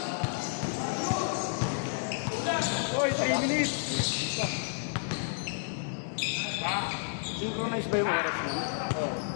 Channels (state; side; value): silent; right; digital silence